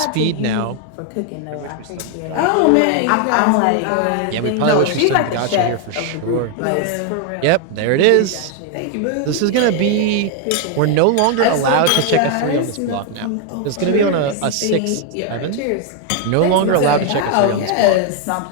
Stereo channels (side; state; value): both; different; correlation 0.01